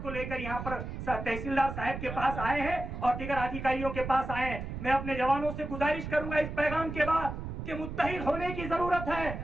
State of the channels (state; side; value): noise; right; rumble, 7 dB below the sound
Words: को लेकर यहाँ पर तहसीलदार साहब के पास आए हैं और दीगर अधिकारियों के पास आए हैं। मैं अपने जवानों से गुजारिश करूंगा इस पैगाम के बाद कि मुत्तहिद होने की जरूरत है।